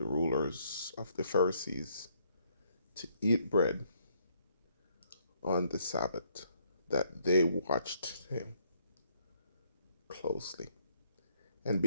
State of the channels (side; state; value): both; inverted; correlation -0.70